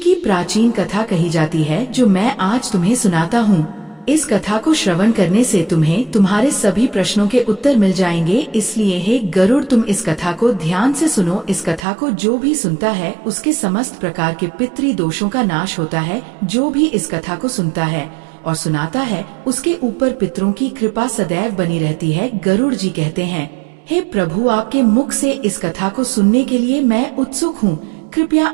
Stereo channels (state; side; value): drops out; left; at 11.9 s